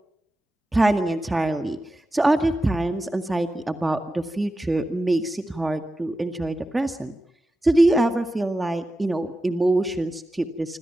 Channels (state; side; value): normal; both; correlation 0.92